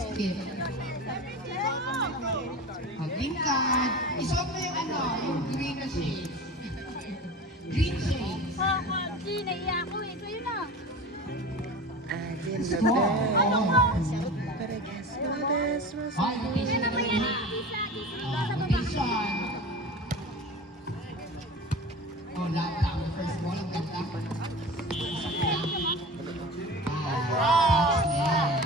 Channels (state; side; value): normal; both; correlation 0.33